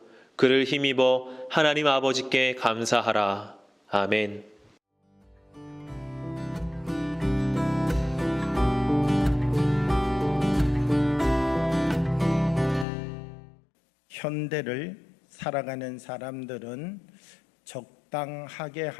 그를 힘입어 하나님 아버지께 감사하라. 아멘. 현대를 살아가는 사람들은 적당하게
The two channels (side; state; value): right; drops out; at 12.9 s